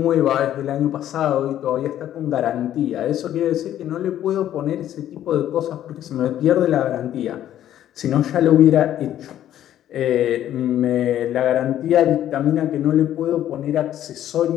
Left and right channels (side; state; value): right; quieter; 11.7 dB